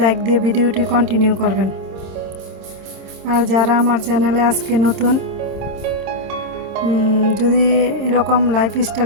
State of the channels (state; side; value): late; left; 26 ms